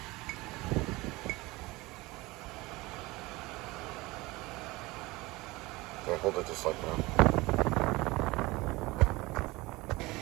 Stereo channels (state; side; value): quieter; left; 21.5 dB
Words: Okay, hold it just like that.